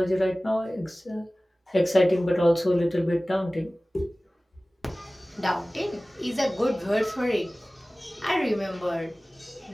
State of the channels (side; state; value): both; normal; correlation 0.98